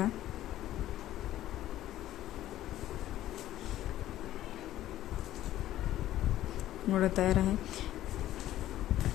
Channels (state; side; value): quieter; right; 13.6 dB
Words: गोळा तयार आहे।